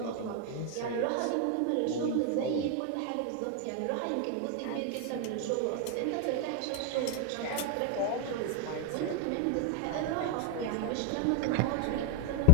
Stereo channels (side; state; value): both; different; correlation 0.01